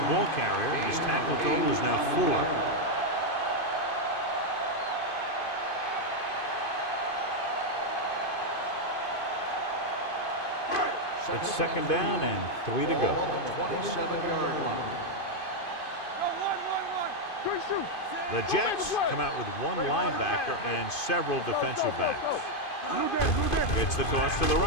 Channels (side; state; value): right; late; 2.5 ms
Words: ball carrier. His tackle total is now 4. It's second down and 3 to go. Ball on the 27-yard line. One. The Jets come out with one linebacker and several defensive backs. It's the toss to the